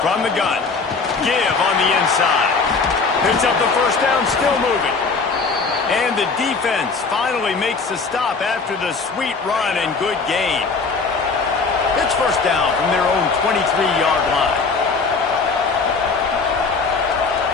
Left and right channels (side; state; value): right; quieter; 4.5 dB